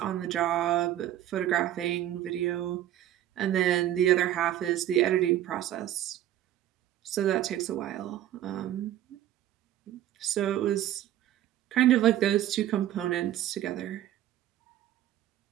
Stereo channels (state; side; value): quieter; left; 12.5 dB